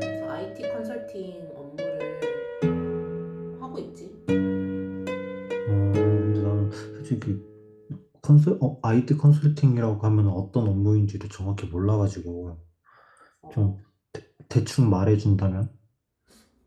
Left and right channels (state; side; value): identical; both; correlation 1.00